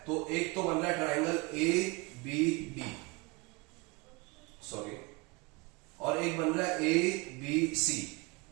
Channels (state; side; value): quieter; left; 26.3 dB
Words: तो एक तो बन रहा है triangle A B D, sorry, और एक बन रहा है A B C.